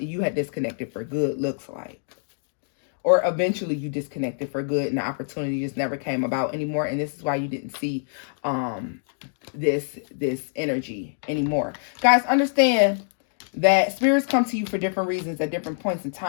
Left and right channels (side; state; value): right; silent; digital silence